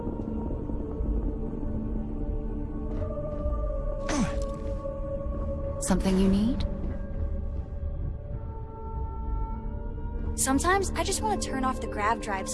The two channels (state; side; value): identical; both; correlation 1.00